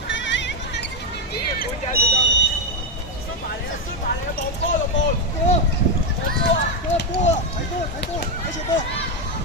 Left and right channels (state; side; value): normal; both; correlation 0.05